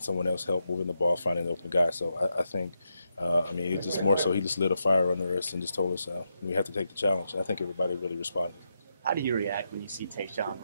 someone else help, moving the ball, finding the open guy. So I think, it's just more so he just lit a fire under us and just told us we have to take the challenge. And I think everybody really responded. How do you react when you see Tayshaun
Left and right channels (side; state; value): both; inverted; correlation -0.84